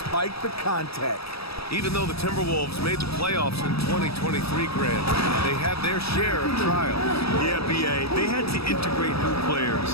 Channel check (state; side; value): late; right; 0.77 ms